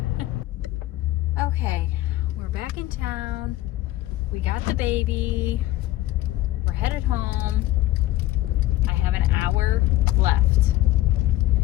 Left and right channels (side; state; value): right; quieter; 15.7 dB